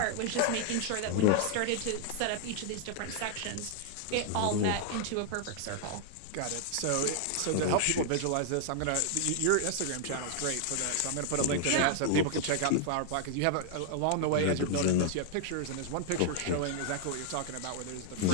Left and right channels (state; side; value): different; both; correlation 0.00